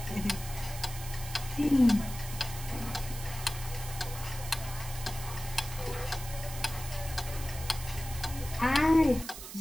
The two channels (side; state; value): right; noise; hiss, 11 dB below the sound